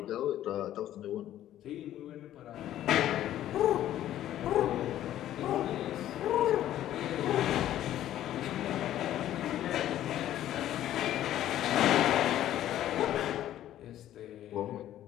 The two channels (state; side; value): quieter; right; 12.5 dB